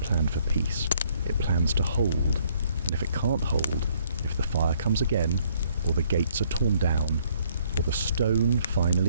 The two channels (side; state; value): both; inverted; correlation -0.65